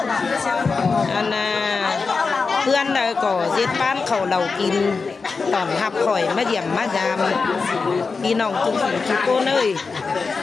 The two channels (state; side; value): quieter; right; 4.6 dB